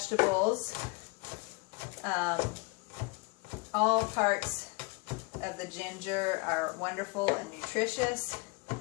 All parts of the ginger are wonderful and nutritious.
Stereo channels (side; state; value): right; quieter; 27.6 dB